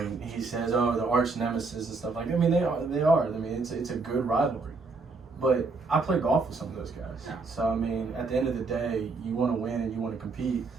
he says, "Oh, the arch nemesis" and stuff like that. I mean, they are. I mean, it's a good rivalry. But I play golf with some of those guys. Yeah. So, I mean, at the end of the day, you want to win and you want to compete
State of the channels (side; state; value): left; quieter; 4.0 dB